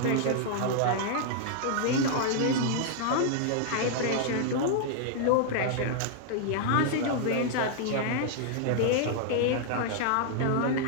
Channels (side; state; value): both; different; correlation -0.01